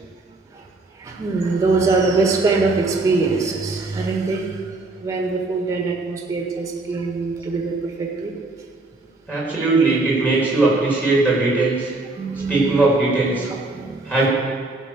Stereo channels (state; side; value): quieter; left; 3.1 dB